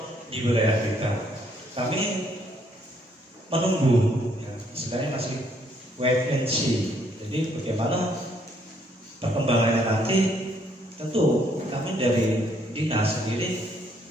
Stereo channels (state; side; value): normal; both; correlation 0.68